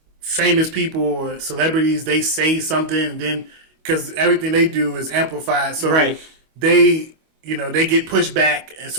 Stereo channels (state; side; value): late; left; 25 ms